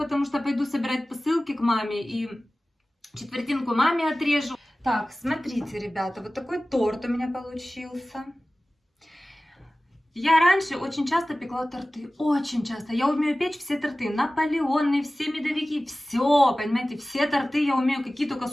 что пойду собирать посылки к маме. И четвертинку маме отрежу. Так, смотрите, ребята, вот такой торт у меня получился. Я раньше очень часто пекла торты, очень часто. Я умею печь все торты, наполеоны, все медовики, все, понимаете, все торты я умею, какие только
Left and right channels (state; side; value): normal; both; correlation 0.97